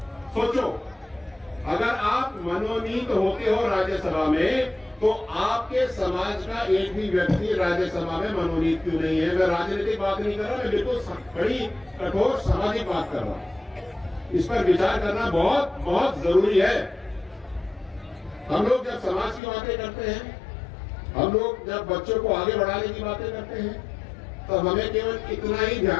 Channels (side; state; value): right; drops out; at 19.4 s